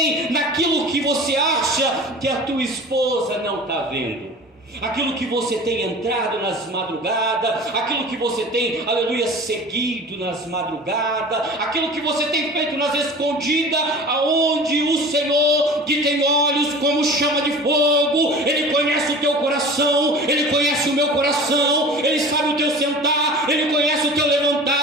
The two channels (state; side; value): normal; both; correlation 0.39